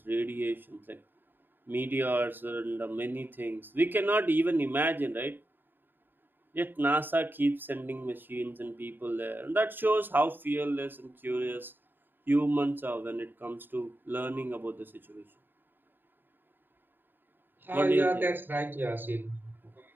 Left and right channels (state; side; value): late; left; 0.094 ms